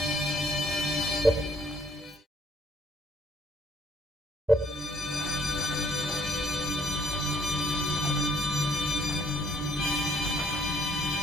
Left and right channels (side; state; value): both; normal; correlation 0.66